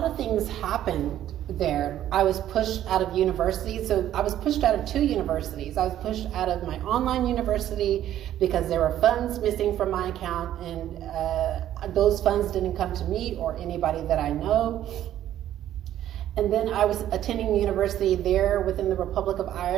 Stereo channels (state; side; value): quieter; left; 12.0 dB